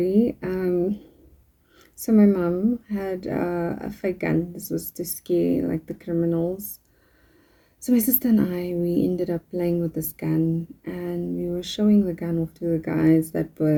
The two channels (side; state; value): both; identical; correlation 1.00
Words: So my mom had a fake gun. This was to scare like the criminals. So my sister and we ended up playing with this gun, and we were showing the gun off to the guys that